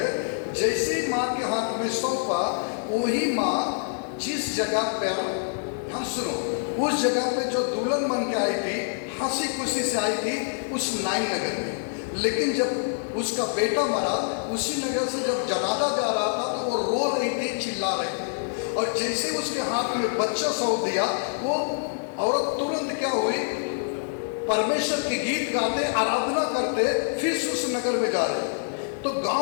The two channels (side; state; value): right; silent; 61 dB below the other